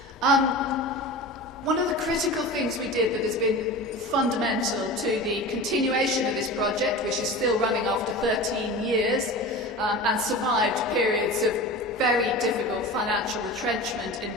One of the critical things we did that has been fundamental to the continuation of this project, which is still running after 13 years, and survived periods of very difficult financial retrenchment in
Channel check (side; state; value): both; normal; correlation 0.32